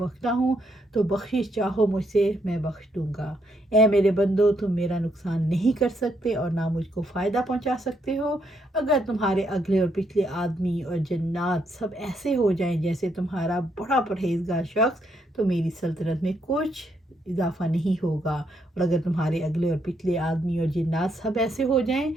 ہوں، تو بخشش چاہو مجھ سے میں بخش دوں گا۔ اے میرے بندو، تم میرا نقصان نہیں کر سکتے اور نہ مجھ کو فائدہ پہنچا سکتے ہو۔ اگر تمہارے اگلے اور پچھلے آدمی اور جنات سب ایسے ہو جائیں جیسے تمہارا بڑا پرہیزگار شخص تو میری سلطنت میں کچھ اضافہ نہیں ہوگا، اور اگر تمہارے اگلے اور پچھلے آدمی اور جنات سب ایسے ہو جائیں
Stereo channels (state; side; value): normal; both; correlation 0.75